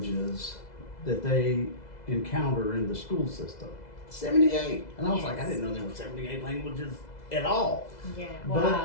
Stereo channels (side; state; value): right; late; 2.0 ms